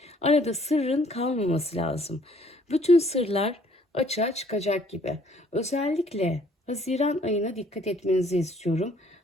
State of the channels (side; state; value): both; normal; correlation 0.61